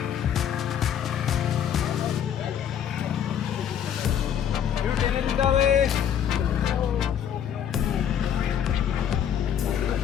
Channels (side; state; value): right; quieter; 9.1 dB